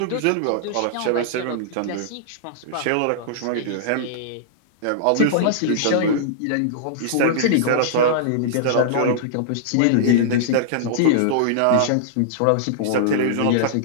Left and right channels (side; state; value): both; different; correlation -0.02